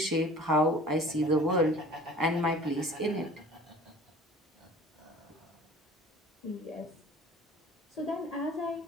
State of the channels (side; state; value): both; normal; correlation 0.45